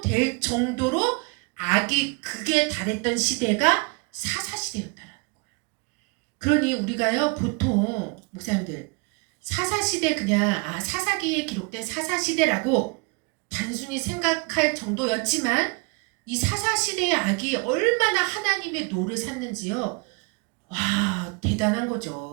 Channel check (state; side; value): quieter; left; 30.6 dB